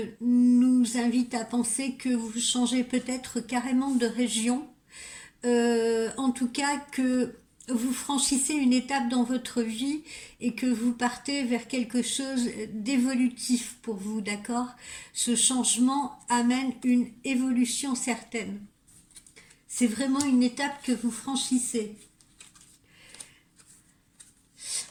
nous invite à penser que vous changez peut-être carrément de région. En tout cas que vous franchissez une étape dans votre vie et que vous partez vers quelque chose d'évolutif pour vous, d'accord? Ce changement amène une évolution certaine. C'est vraiment une étape que vous franchissez.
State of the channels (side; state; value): both; identical; correlation 1.00